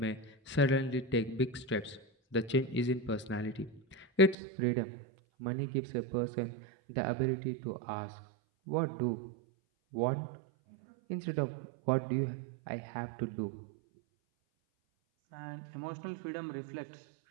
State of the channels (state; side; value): drops out; left; at 4.4 s